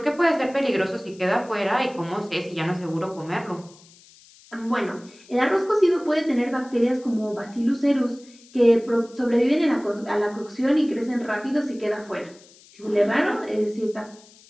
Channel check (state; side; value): noise; left; hiss, 25 dB below the sound